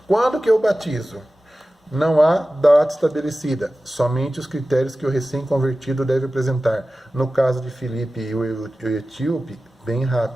Quando que eu batizo? Não há data estabelecida, somente os critérios que o recém-convertido deve apresentar. No caso de Filipe e o etíope, bem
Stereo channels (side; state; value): both; normal; correlation 0.95